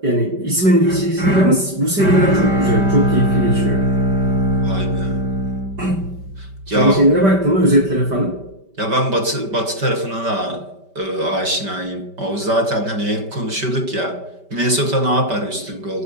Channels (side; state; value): left; late; 5.1 ms